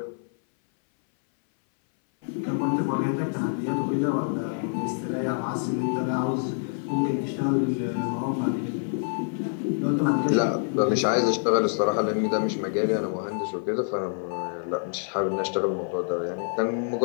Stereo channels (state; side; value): silent; right; 60 dB below the other